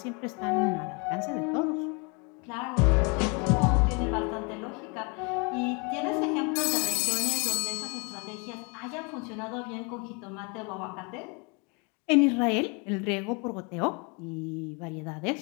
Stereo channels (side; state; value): right; quieter; 32.4 dB